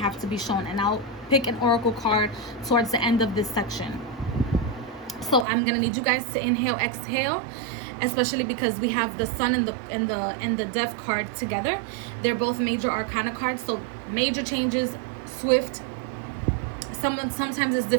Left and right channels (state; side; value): drops out; left; at 5.5 s